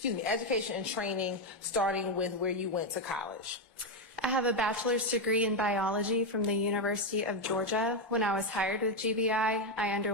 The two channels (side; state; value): both; normal; correlation 0.05